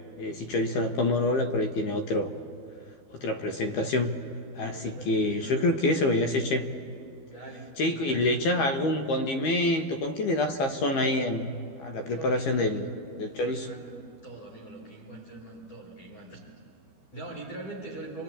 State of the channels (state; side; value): late; right; 12 ms